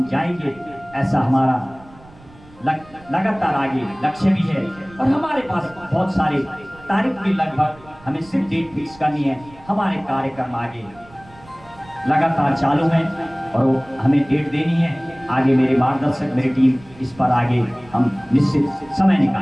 जाएंगे, ऐसा हमारा लगातार आगे लक्ष्य भी है। और हमारे पास बहुत सारे तारीख भी लगभग, हमें सिर्फ डेट फिक्स करनी है। हमारे कार्यक्रम आगे लगातार चालू है और वो हमें डेट देनी है। आगे मेरे मार्गदर्शक, मेरी टीम इस पर आगे हम निश्चित समय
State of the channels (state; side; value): noise; right; rumble, 24 dB below the sound